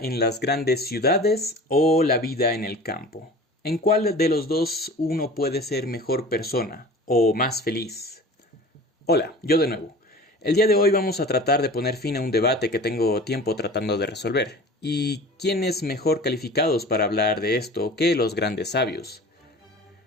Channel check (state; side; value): normal; both; correlation 0.40